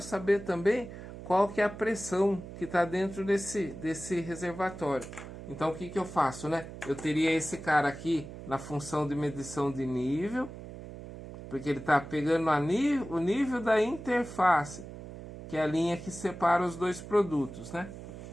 saber também qual que é a pressão que está dentro desse reservatório. Então o que eu faço, né? Eu teria esse cara aqui na função de medição de nível, porque ele está pegando o nível da interface, que é a linha que separa os dois produtos, né?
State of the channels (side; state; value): right; noise; hum, 12 dB below the sound